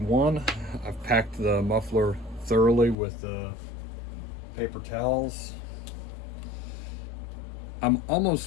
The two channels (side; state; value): right; drops out; at 3.0 s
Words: I've packed the muffler thoroughly with paper towels. I'm